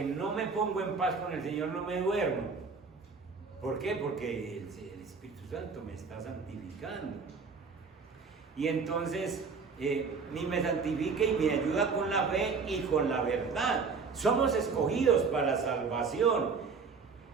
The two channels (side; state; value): left; quieter; 5.0 dB